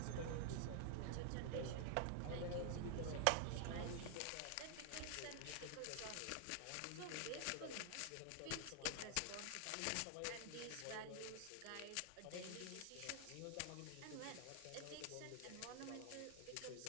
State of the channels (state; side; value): different; both; correlation 0.00